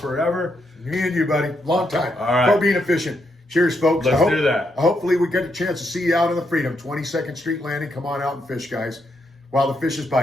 Me and you, buddy. Long time. All right. For being efficient. Cheers, folks. Let's do that. Hopefully we get a chance to see you out on the Freedom. 22nd Street Landing. Come on out and fish, guys, while the fish is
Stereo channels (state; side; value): normal; both; correlation 0.79